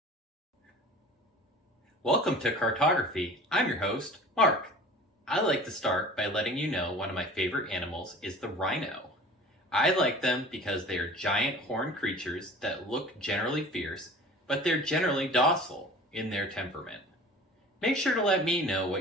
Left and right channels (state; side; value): normal; both; correlation 0.42